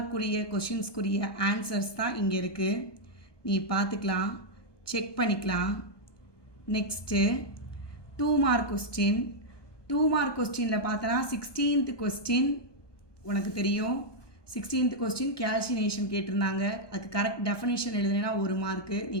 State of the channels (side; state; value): right; late; 1.2 ms